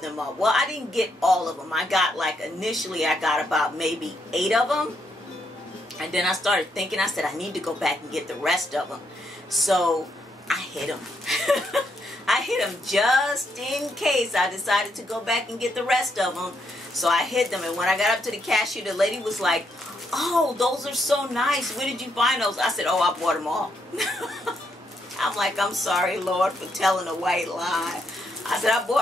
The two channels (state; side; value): normal; both; correlation 0.77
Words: up. Well, I didn't get all of them. I got, like, initially I got about maybe 8 of them. And then I started thinking, I said, I need to go back and get the rest of them. So I hid them. I hid them just in case I decided to go back and get the rest of them. So I hid them. And when I got up to the cashier, the lady was like, oh, those are so nice. Where did you find those? I said, oh, I bought them all. I'm like, I'm sorry, Lord, for telling a white lie. I said, I